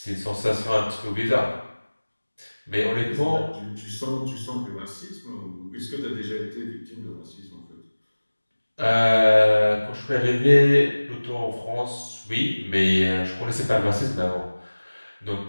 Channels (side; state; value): both; inverted; correlation -1.00